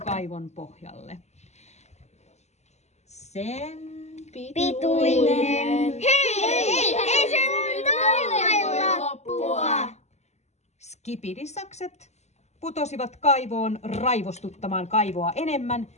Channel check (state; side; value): late; right; 0.33 ms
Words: pohjalle. Sen Pituinen. Hei, ei se voi loppua. Skipidisakset putosivat kaivoon raivostuttamaan kaivoa enemmän.